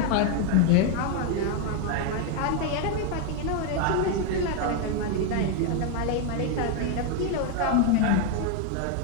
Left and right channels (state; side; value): different; both; correlation 0.01